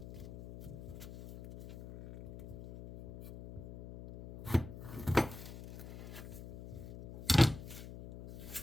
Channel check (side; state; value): left; noise; hum, 12 dB below the sound